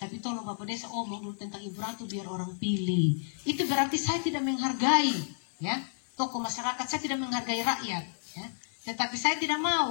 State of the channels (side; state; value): right; silent; digital silence